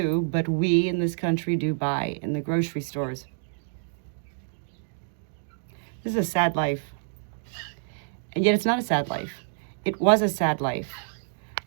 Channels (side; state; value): left; silent; digital silence